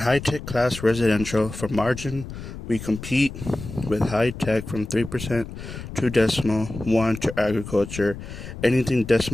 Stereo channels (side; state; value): left; noise; rumble, 11 dB below the sound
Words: class residential, for margin, we compete with high-tech from 3% to decimal 1 to agriculture. Anything